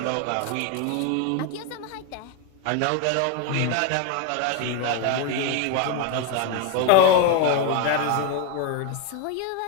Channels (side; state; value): both; different; correlation 0.01